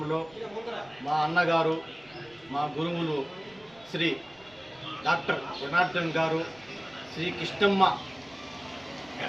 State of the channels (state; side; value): noise; right; rumble, 28 dB below the sound